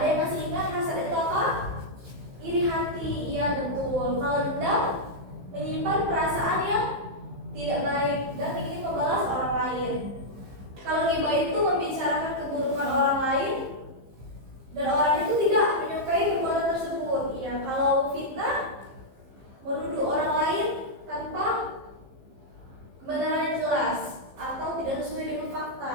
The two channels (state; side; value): late; left; 15 ms